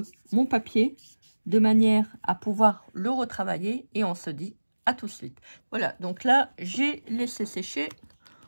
mon papier de manière à pouvoir le retravailler. Et on se dit à tout de suite. Voilà, donc là, j'ai laissé sécher.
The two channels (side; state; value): both; inverted; correlation -1.00